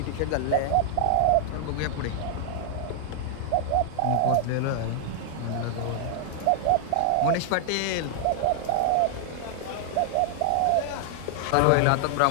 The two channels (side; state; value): both; different; correlation 0.00